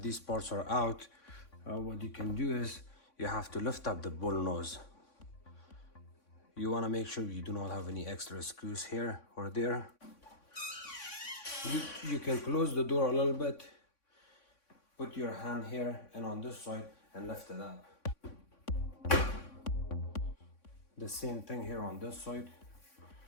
these parts are out, what you can do is you have to lift up the bull nose. You want to make sure you do not have any extra screws here or there. You can close the door a little bit, put your hand here and on this side and lift it up. The same thing here on this side.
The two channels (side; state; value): right; late; 3.6 ms